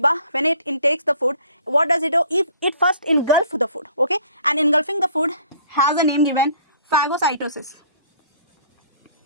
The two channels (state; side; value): inverted; both; correlation -0.56